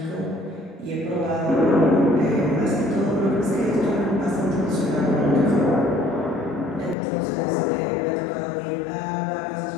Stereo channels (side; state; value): right; drops out; at 7.0 s